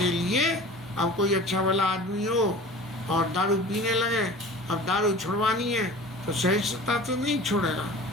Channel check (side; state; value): both; normal; correlation 0.40